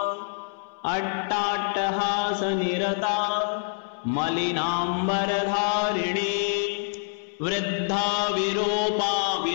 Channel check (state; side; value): silent; right; 61 dB below the other